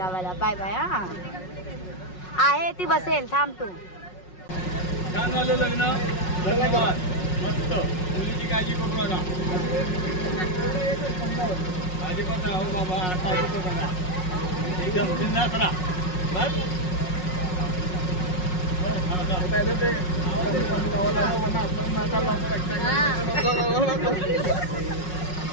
Bye bye. हा आहे ती बसेल थांब तू. छान झालं लग्न, धन्यवाद. मस्त. मुलीची काळजी करू नका. माझी पण हो बाबा, आता येतो बघा एकदम बिंदास राहा. बस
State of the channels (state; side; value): late; right; 5.5 ms